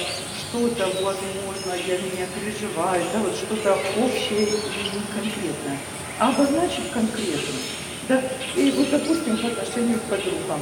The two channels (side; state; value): both; identical; correlation 1.00